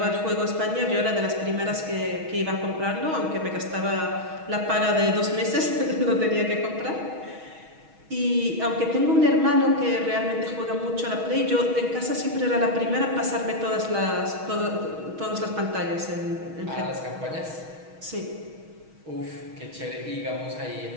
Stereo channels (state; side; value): late; left; 6.3 ms